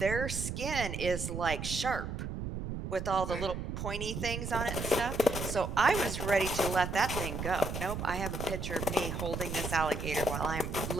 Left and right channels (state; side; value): noise; right; rumble, 5 dB below the sound